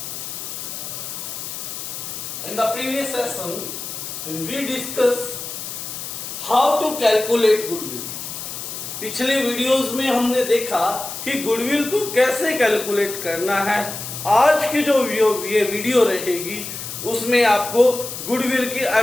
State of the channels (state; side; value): noise; left; hiss, 8 dB below the sound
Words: In the previous session we discussed how to calculate goodwill. पिछले videos में हमने देखा कि goodwill को कैसे calculate करना है। आज की जो ये वीडियो रहेगी उसमें आपको गुडविल की